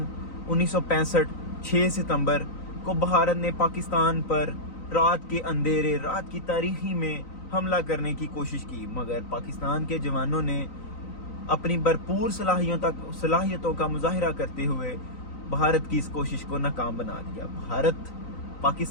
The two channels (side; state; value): right; late; 3.9 ms